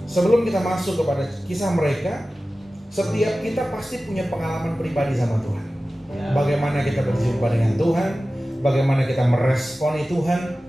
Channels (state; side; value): normal; both; correlation 0.96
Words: sebelum kita masuk kepada kisah mereka, setiap kita pasti punya pengalaman pribadi sama Tuhan. Bagaimana kita berjumpa dengan Tuhan, bagaimana kita meresponi Tuhan.